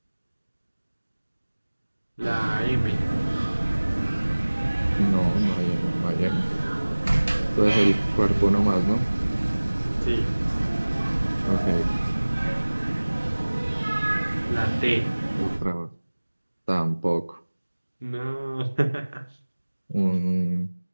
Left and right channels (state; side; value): inverted; both; correlation -1.00